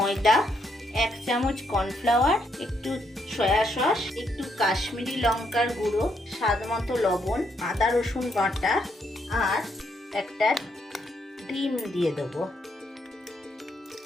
1 চামচ কর্নফ্লাওয়ার, একটু সয়া সস, একটু কাশ্মীরি লঙ্কার গুঁড়ো, স্বাদ মতো লবণ, আদা রসুন বাটা আর একটা ডিম দিয়ে দেবো।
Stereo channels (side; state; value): both; normal; correlation 0.76